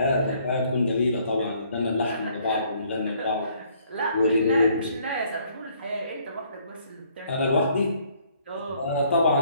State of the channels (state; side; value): inverted; both; correlation -0.65